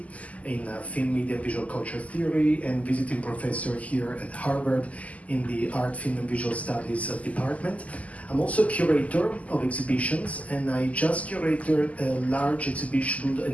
in film, media, and visual culture theory, and visiting professor here at Harvard in the Art, Film, and Visual Studies department. I'm also a curator of exhibitions, and I just curated a large exhibition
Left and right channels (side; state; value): right; late; 0.071 ms